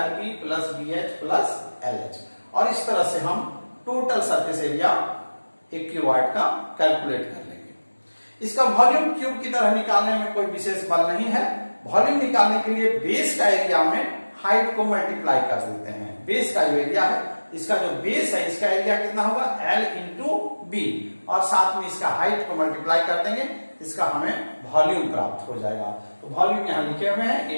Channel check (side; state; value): both; inverted; correlation -1.00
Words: LB plus BH plus LH, और इस तरह से हम टोटल सरफेस एरिया एक क्यूबॉइड का कैलकुलेट कर लेंगे। इसका वॉल्यूम क्यूब की तरह निकालने में कोई विशेष बल नहीं है। वॉल्यूम निकालने के लिए बेस का एरिया में हाइट को मल्टीप्लाई कर देते हैं। बेस का जो एरिया है, इसका जो बेस है इसका एरिया कितना होगा L इंटू बी, और साथ में इसका हाइट को मल्टीप्लाई कर देंगे, इसका हमें वॉल्यूम प्राप्त हो जाएगा। तो वॉल्यूम यहां लिखे हुए हैं